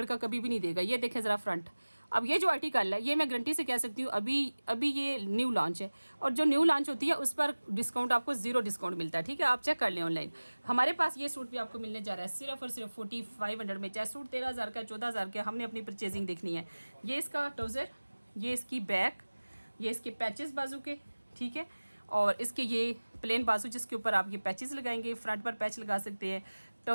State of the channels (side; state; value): both; inverted; correlation -1.00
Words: का कभी भी नहीं देगा। ये देखें ज़रा फ्रंट। अब ये जो आर्टिकल है ये मैं गारंटी से कह सकती हूँ अभी ये न्यू लॉन्च है, और जो न्यू लॉन्च होती है उस पर डिस्काउंट आपको ज़ीरो डिस्काउंट मिलता है। ठीक है, आप चेक कर लें ऑनलाइन। हमारे पास ये सूट भी आपको मिलने जा रहा है सिर्फ और सिर्फ 4500 में, चाहे सूट 13000 का 14000 का, हमने अपनी परचेजिंग देखनी है। ये इसका ट्राउज़र, ये इसकी बैक, ये इसके पैचेस बाजू के, ठीक है, और इसके ये प्लेन बाजू जिसके ऊपर आप ये पैचेस लगाएंगे, फ्रंट पर पैच लगा सकते हैं,